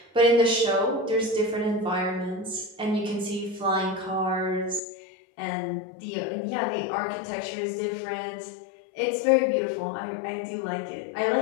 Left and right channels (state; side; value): drops out; right; at 4.8 s